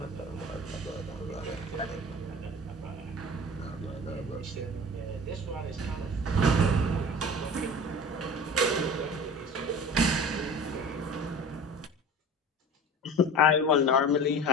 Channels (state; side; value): normal; both; correlation 0.37